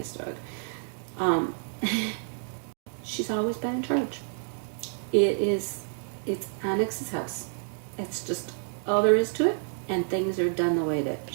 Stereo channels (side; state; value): left; silent; 59 dB below the other